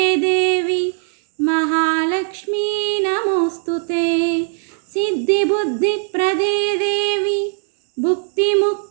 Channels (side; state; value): left; silent; 58 dB below the other